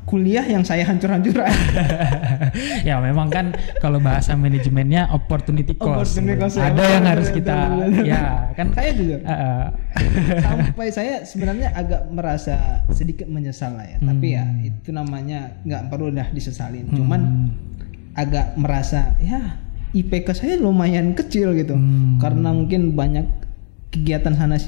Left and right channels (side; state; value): right; silent; digital silence